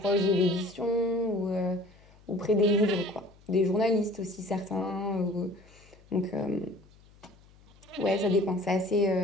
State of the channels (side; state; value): left; noise; hum, 27 dB below the sound